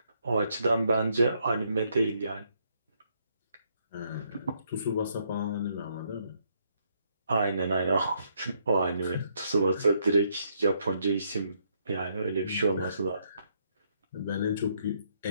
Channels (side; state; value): both; inverted; correlation -0.73